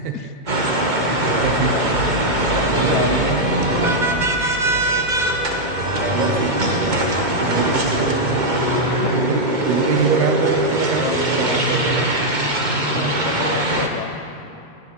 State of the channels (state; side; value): late; left; 2.2 ms